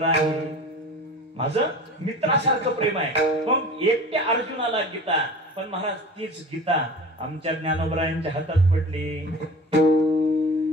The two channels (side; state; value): both; normal; correlation 0.38